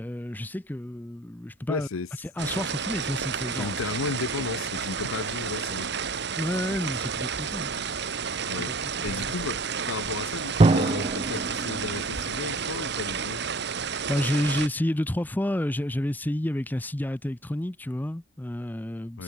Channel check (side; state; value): both; normal; correlation 0.51